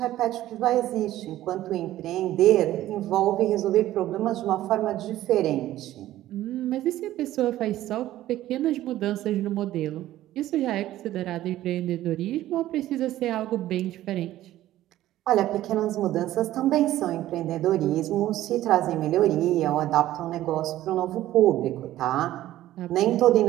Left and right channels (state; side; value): quieter; left; 14.2 dB